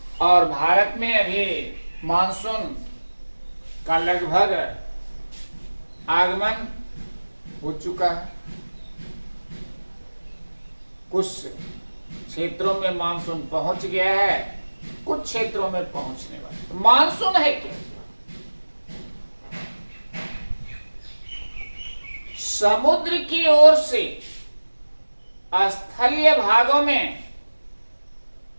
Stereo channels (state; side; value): inverted; both; correlation -1.00